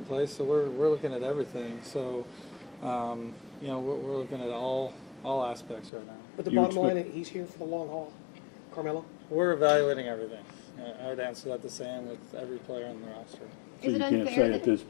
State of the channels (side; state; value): right; drops out; at 5.9 s